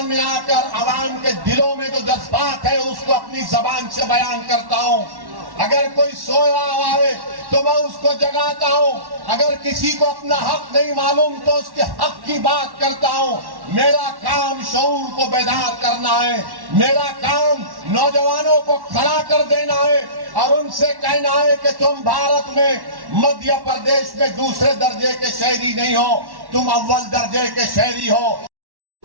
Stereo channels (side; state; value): left; late; 1.1 ms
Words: में आकर आवाम के दिलों में जो जज्बात है उसको अपनी जबान से बयान करता हूं। अगर कोई सोया हुआ है तो मैं उसको जगाता हूं, अगर किसी को अपना हक नहीं मालूम तो उसके हक की बात करता हूं। मेरा काम शऊर को बेदार करना है, मेरा काम नौजवानों को खड़ा कर देना है और उनसे कहना है कि तुम भारत में मध्य प्रदेश में दूसरे दर्जे के शहरी नहीं हो, तुम अव्वल दर्जे के शहरी हो।